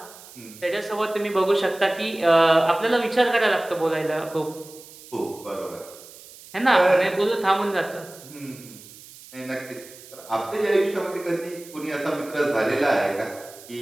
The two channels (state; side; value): noise; right; hiss, 19 dB below the sound